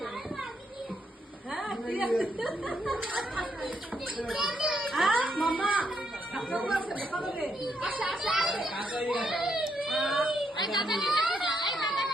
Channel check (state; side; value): normal; both; correlation 0.77